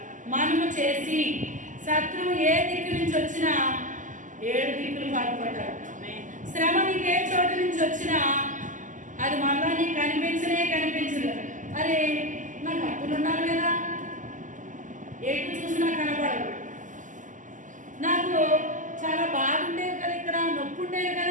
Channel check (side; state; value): left; late; 0.37 ms